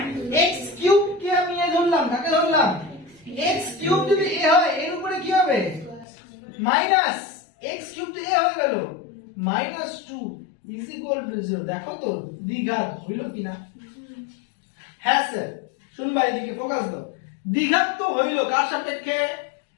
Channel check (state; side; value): drops out; right; at 6.1 s